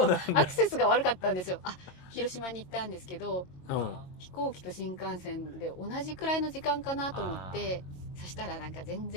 クセスが悪かったんですよ。広島に行ったんですけど、飛行機と新幹線で同じくらいの時間かなと思って、そしたらなんか全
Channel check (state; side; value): late; right; 22 ms